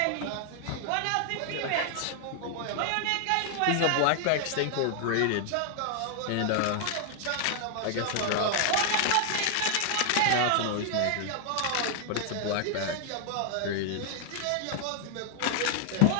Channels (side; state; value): both; different; correlation 0.00